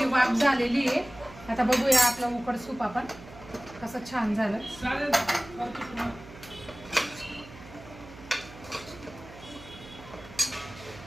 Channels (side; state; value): right; noise; hum, 18 dB below the sound